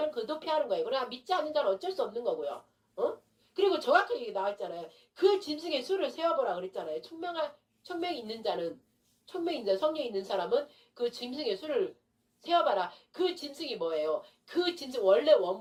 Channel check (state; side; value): identical; both; correlation 1.00